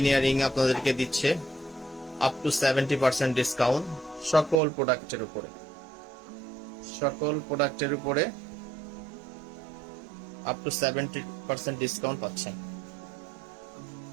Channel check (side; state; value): left; drops out; at 4.6 s